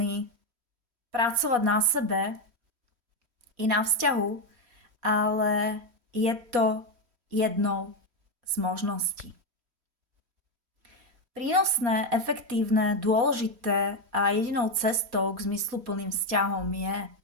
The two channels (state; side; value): late; left; 3.1 ms